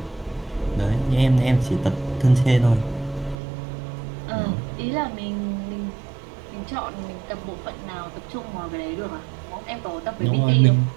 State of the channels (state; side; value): drops out; left; at 3.4 s